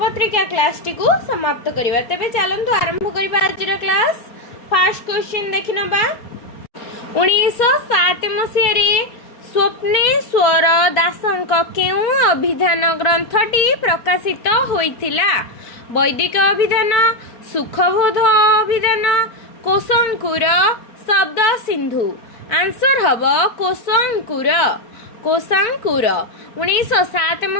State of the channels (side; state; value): right; late; 4.5 ms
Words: क्लास टी को समाप्त करिबा। तबे चलंतु आरंभ करिबा आजर क्लास। फर्स्ट क्वेश्चन देखिनबा। 1907 मसिया रे स्वप्नेश्वर दासंक केउ अभिधान ग्रंथटी प्रकाशित होइथिला? वैदिक अभिधान, सुखबोध अभिधान, कोशंकुर, शब्द सिंधु। आंसर हबो कोशंकुर। 1907